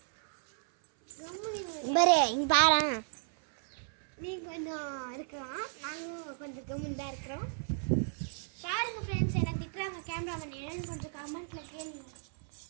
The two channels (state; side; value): silent; left; 55 dB below the other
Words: பாரு இங்க பாரு. நீங்கள் கொஞ்சம் இருக்கலாம், நாங்களும் கொஞ்சம் கம்முன்னு தான் இருக்கிறோம். பாருங்க ஃப்ரெண்ட்ஸ், எனக்கு திட்டுறாங்க கேமராமேன், என்னன்னு கொஞ்சம் கமெண்ட்ல கேளுங்க.